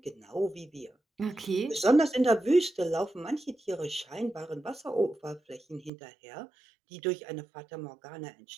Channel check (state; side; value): drops out; left; at 5.9 s